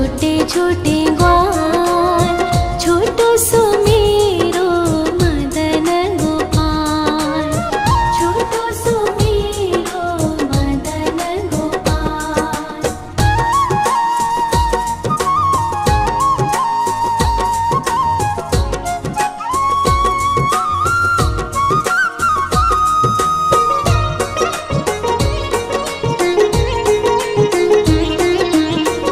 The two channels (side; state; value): both; identical; correlation 1.00